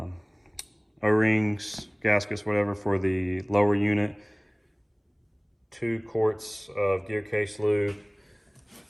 O-rings, gaskets, whatever, for the lower unit, 2 quarts of gear case lube.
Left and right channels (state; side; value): identical; both; correlation 1.00